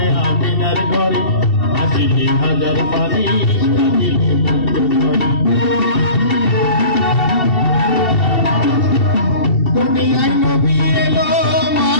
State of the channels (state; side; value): late; right; 2.7 ms